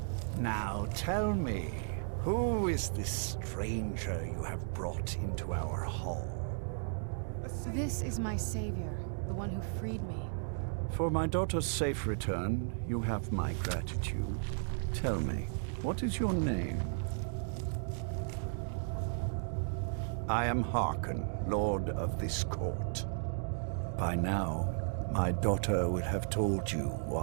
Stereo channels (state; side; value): silent; left; digital silence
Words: Now tell me, who is this stranger you have brought into our hall? This is my savior, the one who freed me. For my daughter's safe return, you have my gratitude. Tell me, what is your name? I am Harkon, Lord of this court. By now, my daughter would have told you